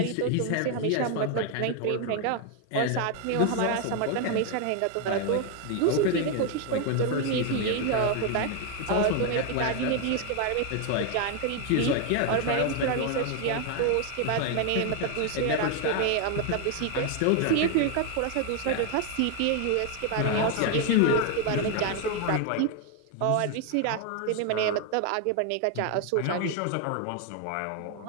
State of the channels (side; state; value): both; different; correlation 0.01